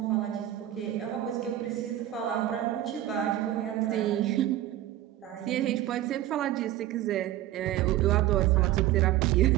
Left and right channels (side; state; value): left; quieter; 13.7 dB